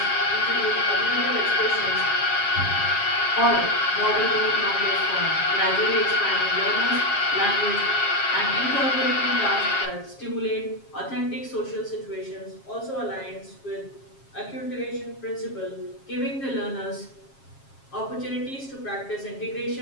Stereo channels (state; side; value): late; right; 7.4 ms